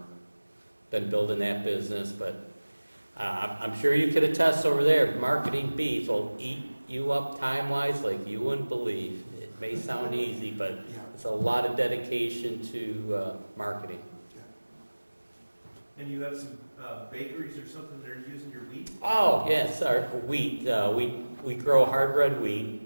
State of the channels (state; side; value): inverted; both; correlation -1.00